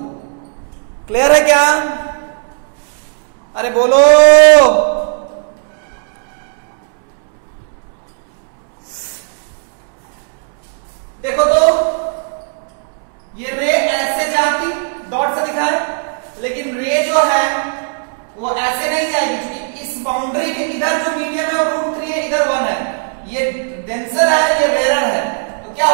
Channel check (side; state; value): left; silent; 69 dB below the other